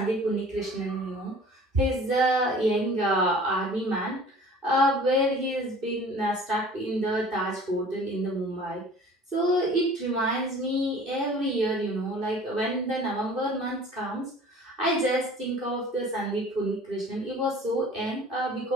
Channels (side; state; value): both; normal; correlation 0.47